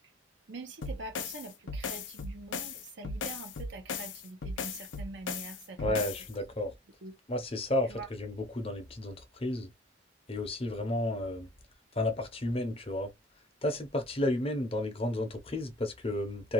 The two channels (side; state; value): both; normal; correlation 0.48